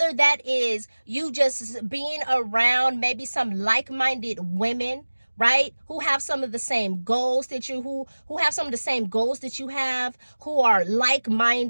that is you just being around maybe some like-minded women, right? Who have some of the same goals that you, who have some of the same goals that you have, who are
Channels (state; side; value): inverted; both; correlation -1.00